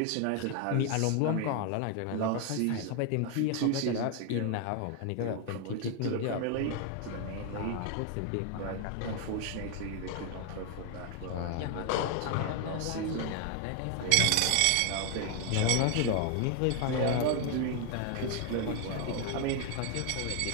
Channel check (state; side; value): different; both; correlation 0.00